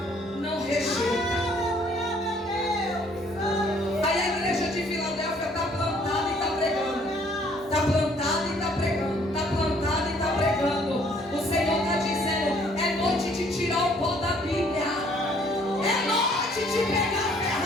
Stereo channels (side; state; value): both; normal; correlation 0.61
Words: não rejeita. Aí a igreja de Filadélfia está plantada e está pregando, está plantada e está pregando, está plantada e está pregando. O Senhor está dizendo: é noite de tirar o pó da Bíblia, é noite de pegar a